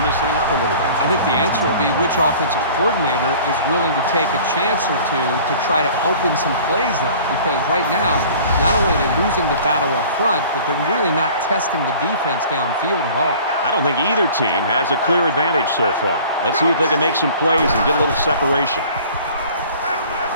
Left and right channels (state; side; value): inverted; both; correlation -0.47